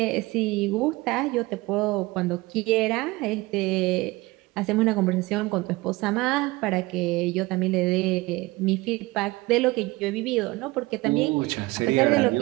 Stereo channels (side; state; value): left; quieter; 21.5 dB